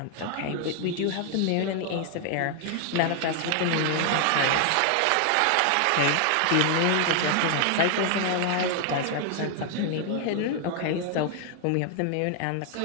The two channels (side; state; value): both; different; correlation 0.00